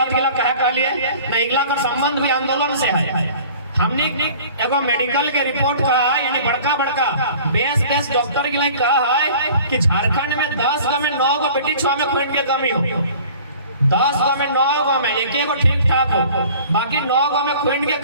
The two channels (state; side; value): inverted; both; correlation -0.46